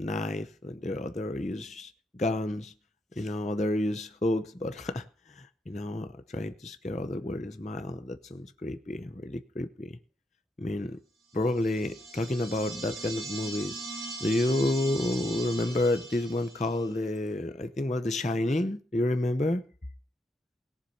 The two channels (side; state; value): both; normal; correlation 0.78